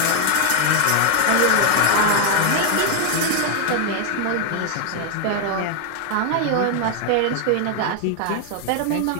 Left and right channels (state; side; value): different; both; correlation 0.00